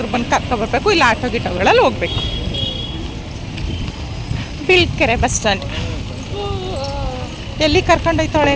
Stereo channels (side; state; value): both; identical; correlation 1.00